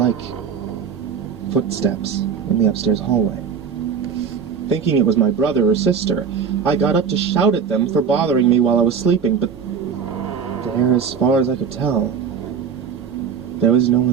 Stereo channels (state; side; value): quieter; left; 6.5 dB